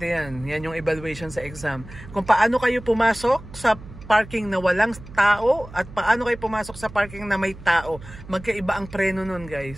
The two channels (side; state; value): right; noise; hum, 16 dB below the sound